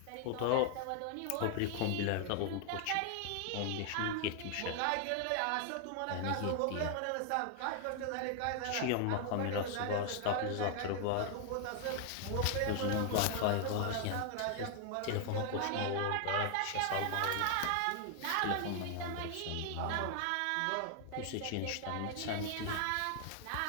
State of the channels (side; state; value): both; different; correlation 0.00